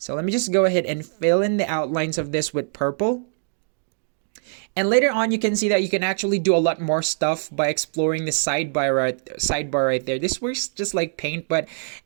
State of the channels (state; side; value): silent; left; digital silence